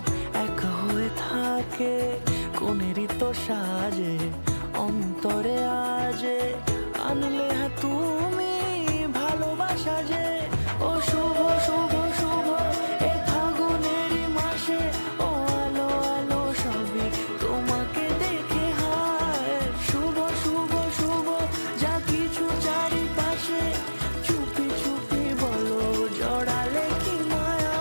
এক হয়ে থাকে। কোনেরই তো সাজে অন্তরে আজে, আনলে তুমি ভালোবাসা যে। ও শুভ শুভ শুভ এ ফাগুনেরই মাসে, ও আলো আলো সবই তোমাকে দেখে হায়। শুভ শুভ শুভ যা কিছু চারিপাশে, চুপি চুপি বলো জড়ালে কি মায়া।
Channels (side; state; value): both; inverted; correlation -1.00